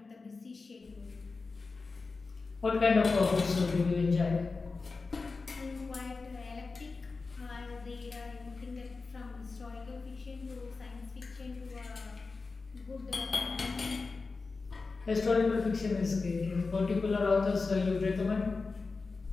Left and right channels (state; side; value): quieter; right; 4.1 dB